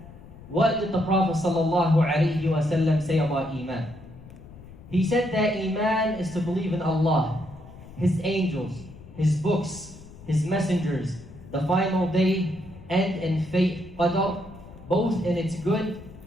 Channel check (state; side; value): noise; left; rumble, 18 dB below the sound